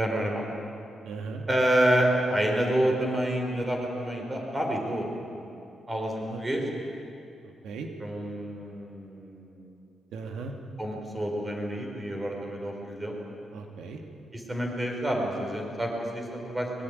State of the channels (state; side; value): normal; both; correlation 0.87